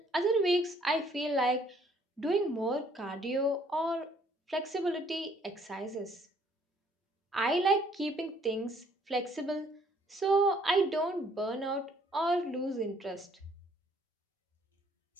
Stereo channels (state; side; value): normal; both; correlation 0.63